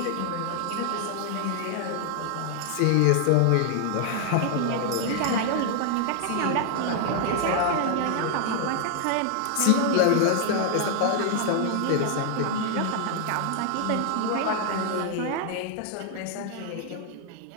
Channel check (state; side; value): different; both; correlation 0.00